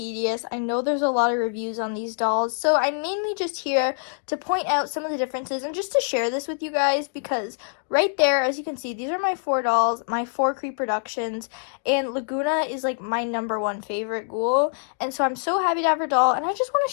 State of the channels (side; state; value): right; silent; digital silence